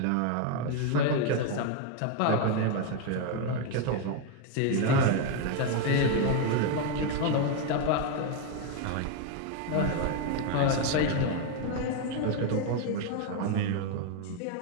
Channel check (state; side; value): different; both; correlation 0.01